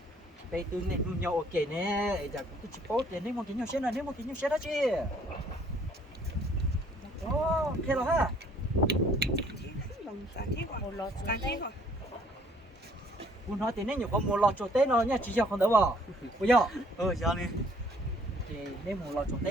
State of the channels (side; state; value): both; normal; correlation 0.61